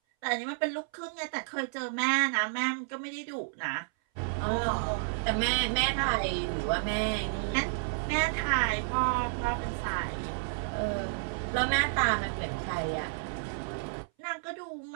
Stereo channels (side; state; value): left; silent; 57 dB below the other